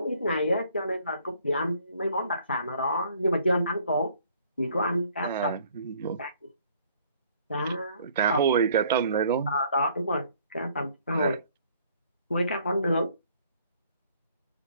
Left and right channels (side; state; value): both; inverted; correlation -0.60